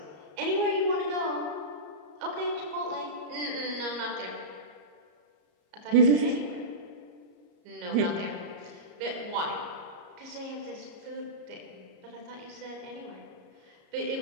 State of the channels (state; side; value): late; left; 34 ms